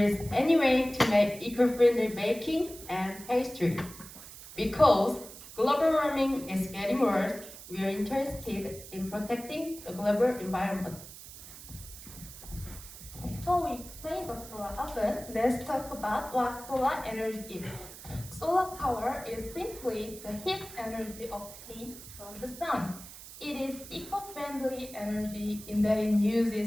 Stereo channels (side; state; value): right; noise; hiss, 15 dB below the sound